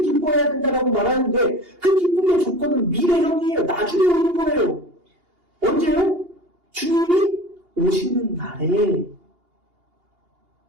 기뻐해야 된다라고 말하는데 그 기쁨의 조건은 미래형이에요. 나중에 오는 거예요. 언제요? 주님이 오시는 날에.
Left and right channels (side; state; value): left; late; 2.8 ms